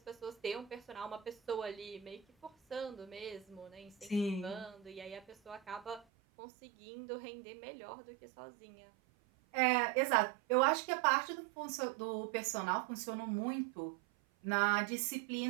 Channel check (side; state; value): left; drops out; at 6.1 s